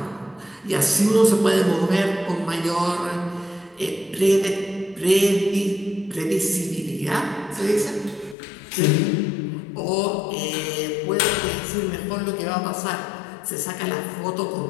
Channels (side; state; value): right; drops out; at 8.3 s